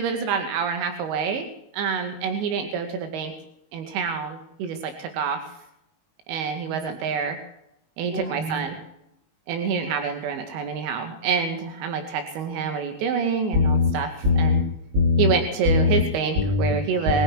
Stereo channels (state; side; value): late; left; 19 ms